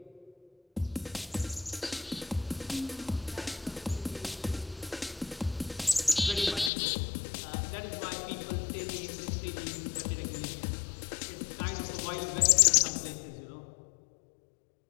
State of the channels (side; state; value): right; drops out; at 6.7 s